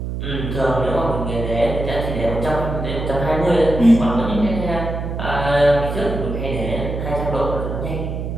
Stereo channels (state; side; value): noise; right; hum, 4 dB below the sound